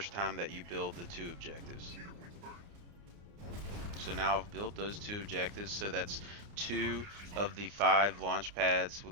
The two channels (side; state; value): left; late; 29 ms